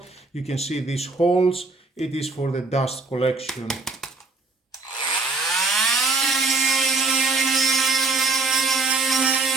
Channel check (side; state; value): left; quieter; 3.6 dB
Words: You can see these holes. It is for the dust collection.